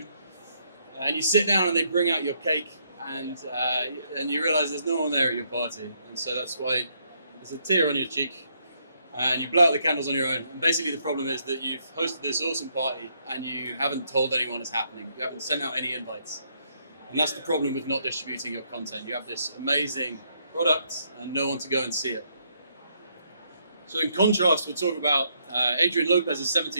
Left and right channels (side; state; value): both; inverted; correlation -0.73